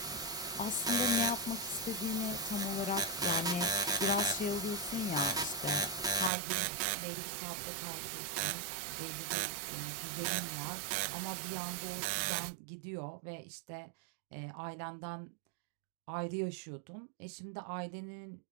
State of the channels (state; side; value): drops out; left; at 6.3 s